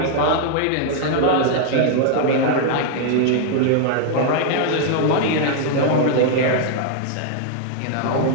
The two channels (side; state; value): both; different; correlation 0.00